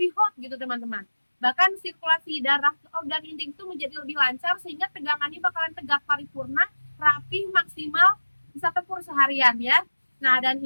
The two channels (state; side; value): inverted; both; correlation -1.00